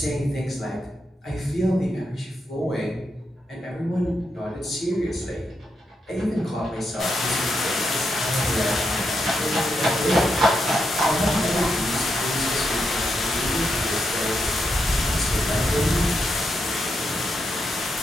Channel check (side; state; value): both; normal; correlation 0.83